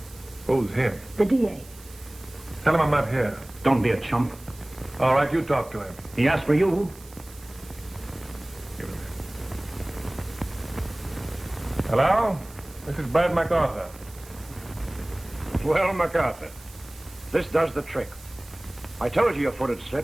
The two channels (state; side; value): noise; right; hiss, 22 dB below the sound